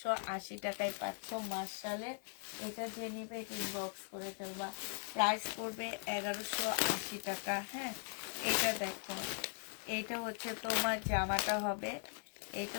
টাকায় পাচ্ছ মার্শালের। এটা যে নিবে এটা ইনবক্স করে ফেলবা। প্রাইস পড়বে 1180 টাকা। হ্যাঁ, এটা দেখো, এটা হচ্ছে তোমার জামাটা হবে, এটা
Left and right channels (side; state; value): right; silent; 51 dB below the other